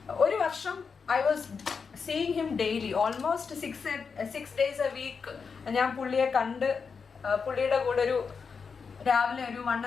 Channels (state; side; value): quieter; right; 5.5 dB